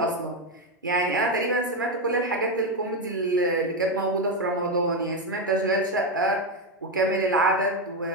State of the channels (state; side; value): normal; both; correlation 0.08